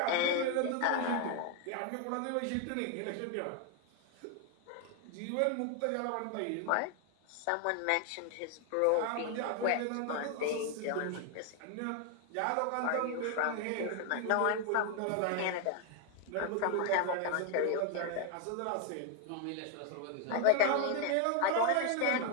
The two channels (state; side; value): different; both; correlation 0.01